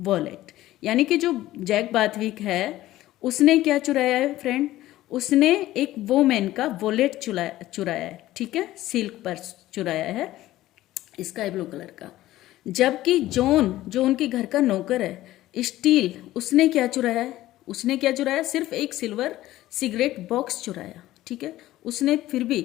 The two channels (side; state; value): right; quieter; 15.4 dB